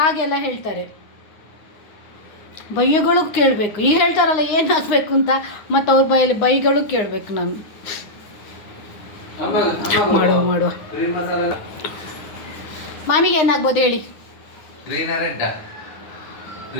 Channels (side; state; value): right; late; 9.7 ms